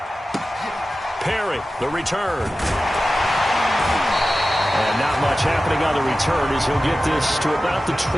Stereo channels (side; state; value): both; normal; correlation 0.94